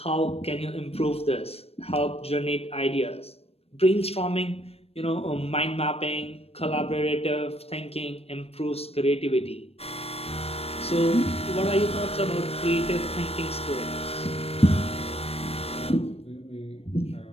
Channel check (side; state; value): right; late; 0.29 ms